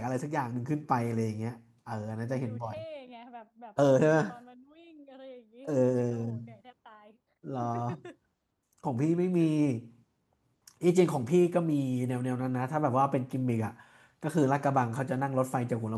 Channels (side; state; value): both; identical; correlation 1.00